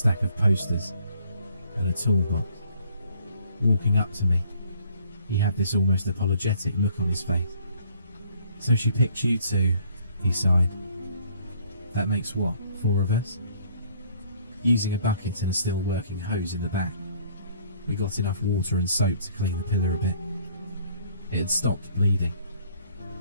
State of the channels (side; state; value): both; inverted; correlation -0.61